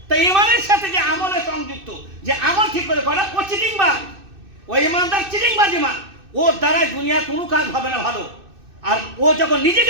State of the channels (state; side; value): late; left; 2.6 ms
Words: তাই ইমানের সাথে যে আমলে সংযুক্ত, যে আমল ঠিক করে করা, ও চিটিংবাজ। ওই ইমানদার চিটিংবাজ ইমান। ওর দ্বারা দুনিয়ার কোনো কাজ হবে না ভালো। আর ও যখন